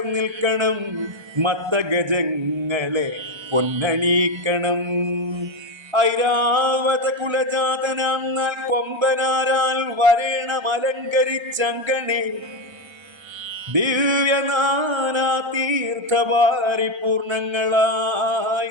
നിൽക്കണം. മത്തഗജങ്ങളെ പൊന്നണീക്കണം. ഐരാവത കുലജാതനാം നാൽ കൊമ്പനാരാൽ വരേണം അലങ്കരിച്ചങ്കണേ. ദിവ്യനാനാ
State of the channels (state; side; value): late; left; 1.3 ms